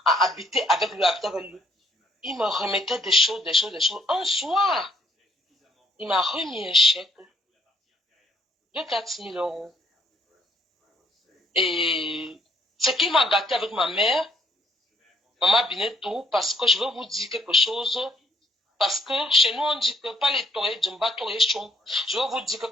Habiter avec lui. Il me remettait des choses. Un soir, il m'a remis un chèque de 4 000 €. Et ce qui m'a gâté avec ma mère, Maman Binetou, parce que je veux vous dire quelque chose, parce que chez nous on dit que pas les torés, Djumba toré chon. Je veux vous dire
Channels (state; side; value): normal; both; correlation 0.67